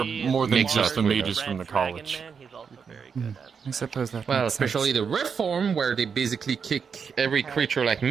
more than Mix just up the with mages from the college. I suppose that Well, makes especially sense. the reform, where they basically kick every creature like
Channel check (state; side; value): quieter; left; 6.3 dB